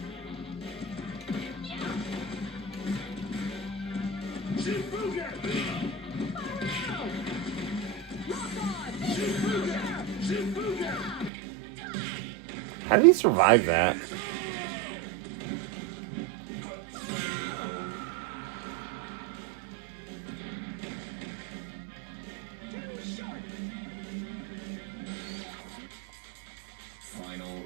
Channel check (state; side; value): drops out; left; at 11.3 s